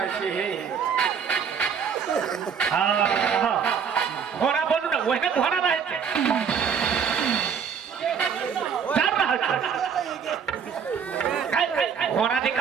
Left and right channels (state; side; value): quieter; left; 7.0 dB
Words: छे हे हाँ घोड़ा बोलू ना वही घोड़ा रहे थे डर रहा था घोड़ा की